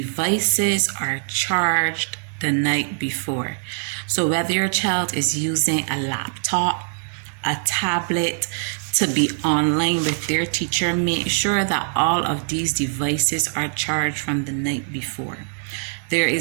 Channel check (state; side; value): silent; left; 64 dB below the other